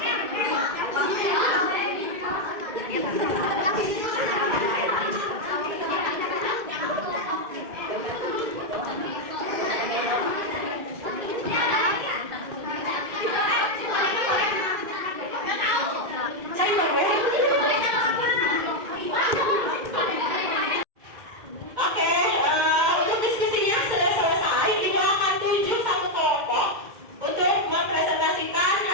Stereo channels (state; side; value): late; left; 2.1 ms